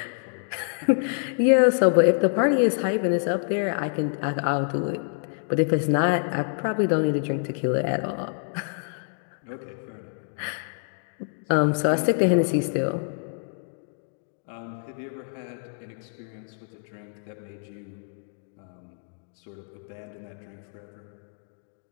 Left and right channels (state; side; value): silent; right; digital silence